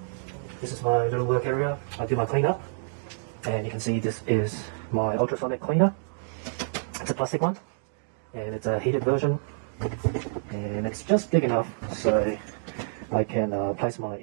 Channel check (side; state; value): left; silent; digital silence